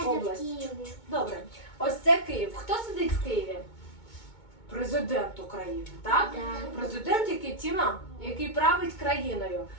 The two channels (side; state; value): right; late; 2.2 ms